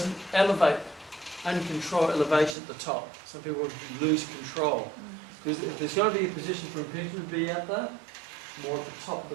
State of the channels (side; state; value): left; drops out; at 2.6 s